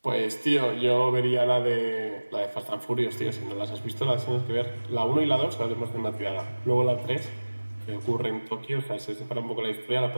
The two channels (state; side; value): inverted; both; correlation -1.00